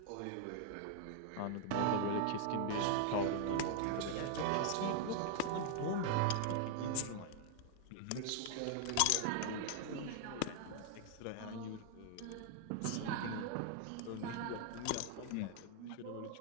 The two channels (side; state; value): both; different; correlation 0.00